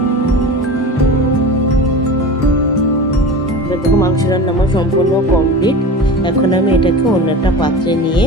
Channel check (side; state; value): both; normal; correlation 0.31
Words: দেখো মাংস রান্না আমার সম্পূর্ণ কমপ্লিট। এখন আমি এটাকে অন্য একটা পাত্রে নিয়ে